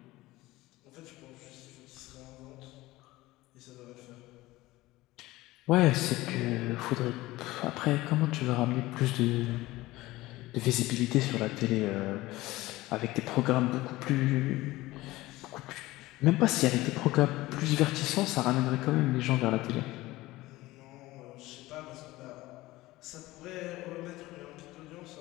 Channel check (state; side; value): quieter; right; 18.5 dB